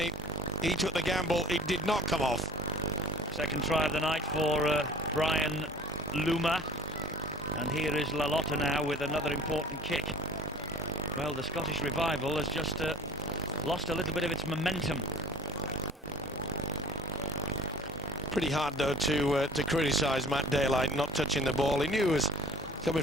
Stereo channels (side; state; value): both; normal; correlation 0.42